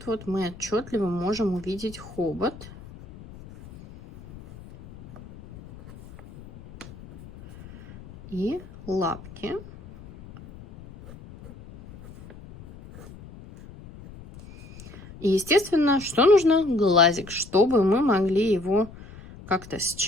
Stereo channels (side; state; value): left; noise; rumble, 18 dB below the sound